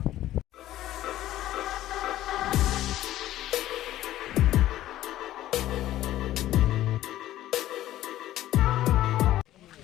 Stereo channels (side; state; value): right; quieter; 13.9 dB